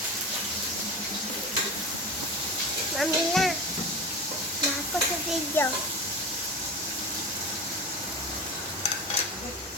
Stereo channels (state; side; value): normal; both; correlation 0.29